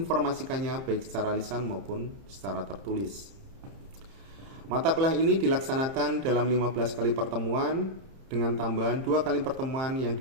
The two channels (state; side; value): late; left; 30 ms